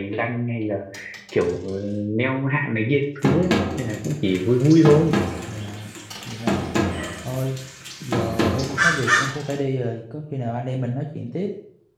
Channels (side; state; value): both; identical; correlation 1.00